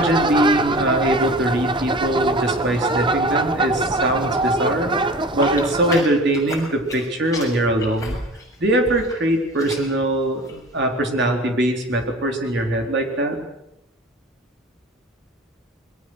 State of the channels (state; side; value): normal; both; correlation 0.39